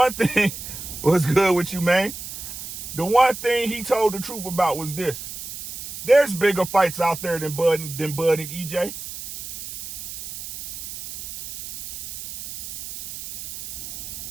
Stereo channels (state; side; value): noise; right; hiss, 10 dB below the sound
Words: thing was good with you, man. The one thing he told the truth about was this. There's bigger fights out there than Bud and EJ.